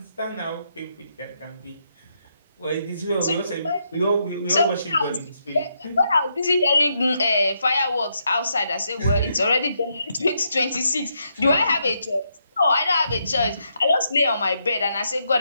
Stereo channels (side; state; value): both; inverted; correlation -0.79